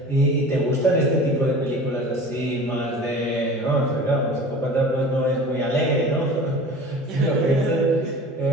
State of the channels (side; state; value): both; normal; correlation 0.39